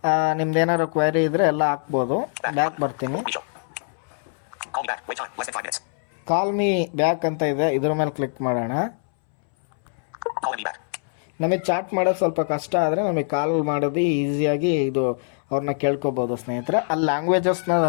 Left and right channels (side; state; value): right; silent; 63 dB below the other